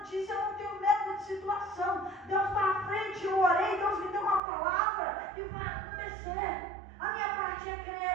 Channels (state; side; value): drops out; left; at 4.4 s